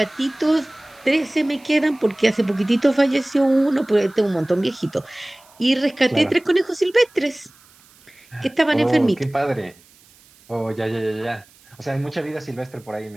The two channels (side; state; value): right; noise; hiss, 28 dB below the sound